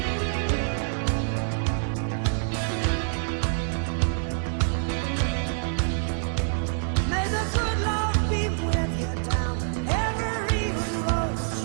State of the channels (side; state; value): left; silent; digital silence